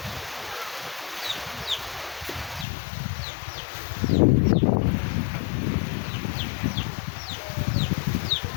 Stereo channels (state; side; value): drops out; right; at 2.7 s